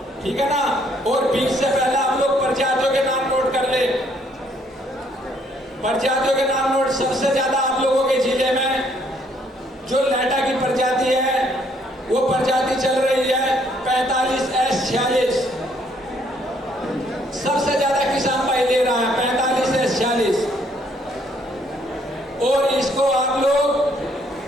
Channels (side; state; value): both; normal; correlation 0.67